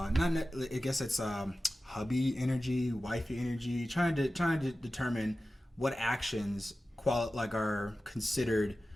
guess it's hubby energy, wifey energy, trying to determine what actions are considered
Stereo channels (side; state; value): both; normal; correlation 0.95